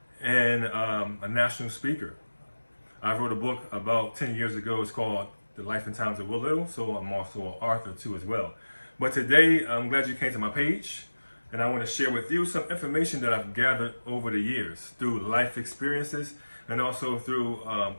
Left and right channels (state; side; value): inverted; both; correlation -1.00